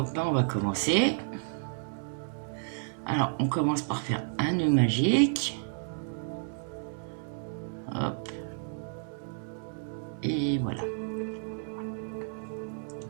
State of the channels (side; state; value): left; silent; 57 dB below the other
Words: là, on va commencer. Alors, on commence par faire un nœud magique. Hop. Et voilà.